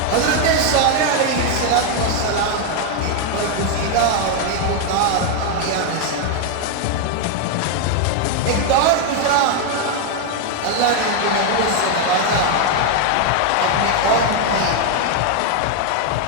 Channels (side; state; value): both; different; correlation 0.01